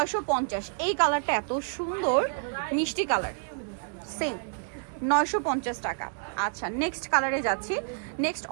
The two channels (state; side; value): silent; left; 58 dB below the other